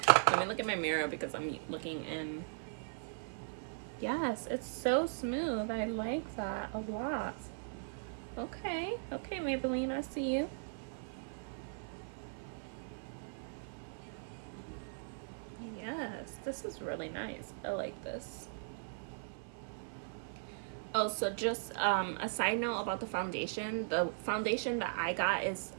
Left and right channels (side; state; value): left; silent; 52 dB below the other